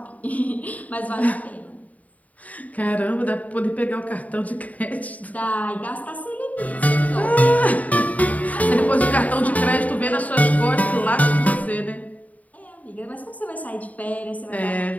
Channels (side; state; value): right; late; 0.072 ms